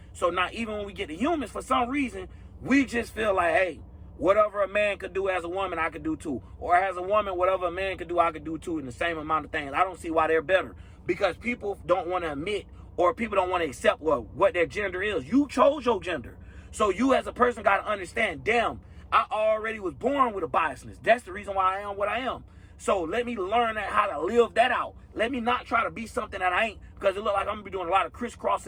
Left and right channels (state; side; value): identical; both; correlation 1.00